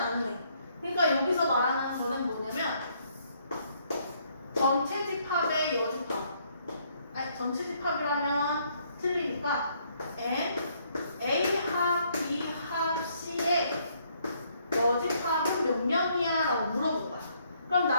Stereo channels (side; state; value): both; inverted; correlation -0.69